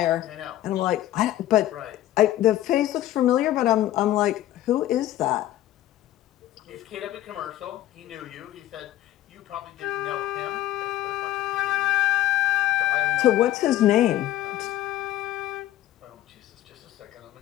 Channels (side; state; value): right; quieter; 14.0 dB